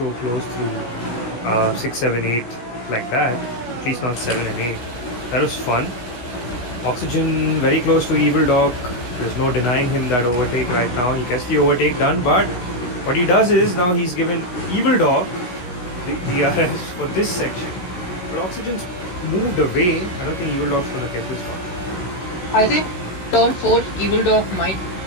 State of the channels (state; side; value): late; right; 16 ms